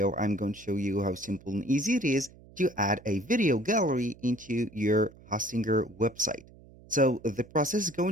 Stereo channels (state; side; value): noise; right; hum, 23 dB below the sound